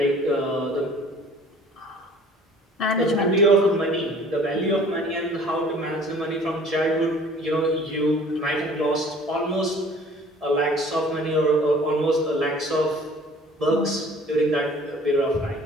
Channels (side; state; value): both; normal; correlation 0.51